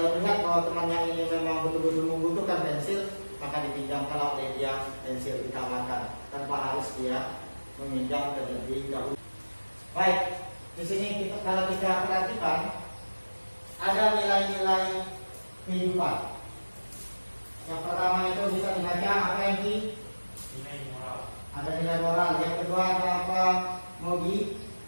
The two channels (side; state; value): both; inverted; correlation -1.00